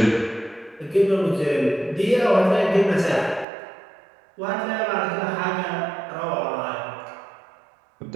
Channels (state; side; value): drops out; left; at 3.5 s